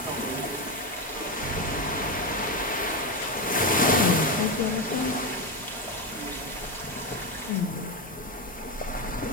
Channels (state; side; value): normal; both; correlation 0.11